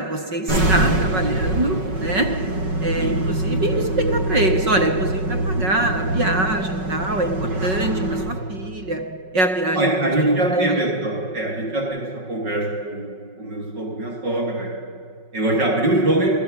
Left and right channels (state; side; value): late; left; 5.4 ms